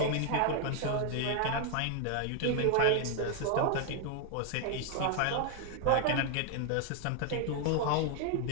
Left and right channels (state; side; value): different; both; correlation 0.00